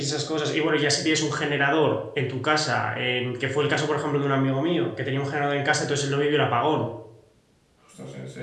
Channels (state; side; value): identical; both; correlation 1.00